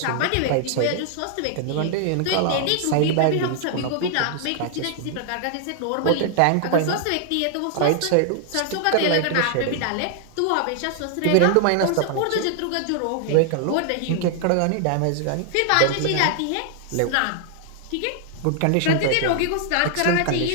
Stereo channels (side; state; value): both; different; correlation 0.00